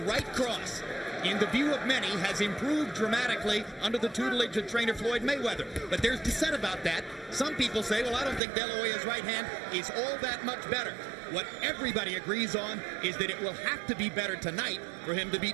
cross, in the view of many, has improved dramatically under the tutelage of trainer Floyd Mayweather. But there's dissent about that. Some people say, well, I don't think De La Hoya's right hand is all that much better. What everybody agrees on is that it will have to be better tonight for him to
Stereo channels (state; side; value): drops out; left; at 8.4 s